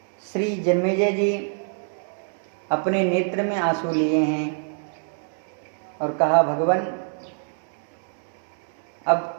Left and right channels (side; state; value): left; silent; 62 dB below the other